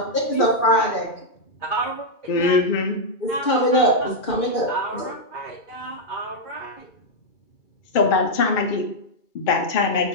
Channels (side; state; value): right; late; 2.3 ms